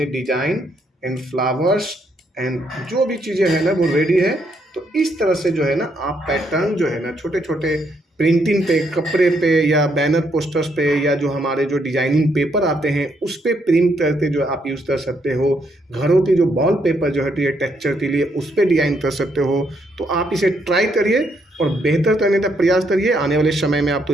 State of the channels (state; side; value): normal; both; correlation 0.74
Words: डिजाइन एंड फ्लावर्स एंड जो भी चीज़ें हैं ना वो रेडी है। तो इस तरह से जो है ना आप पैटर्न जो है ना छोटे छोटे प्रिंटिंग पे, कपड़े पे या बैनर पोस्टर्स पे या जो हमारे जो डिजाइनिंग पेपर आते हैं उस पे प्रिंट करके जो आप यूज़ कर सकते हो। घरों की जो वॉल पेपर जो है तो ये टेक्सचर के लिए उस पर डिज़ाइन कर सकते हो। तो आप इसे ट्राई करिए और बेहतर करने का प्रयास करिए। आने वाले समय में आप तो